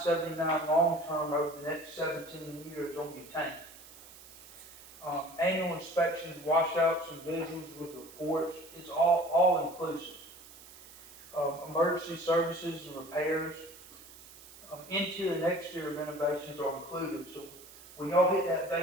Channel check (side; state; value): right; noise; hiss, 19 dB below the sound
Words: long term over the next 17 years on your tank. Annual inspections, washouts, and visuals with reports, it's all inclusive. Emergency services and repairs, interior and exterior renovations are included. So when y'all hit that